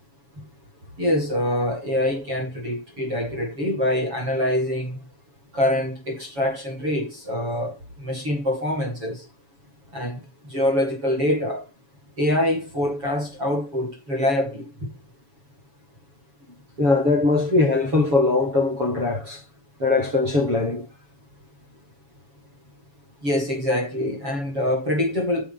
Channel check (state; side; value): late; left; 7.1 ms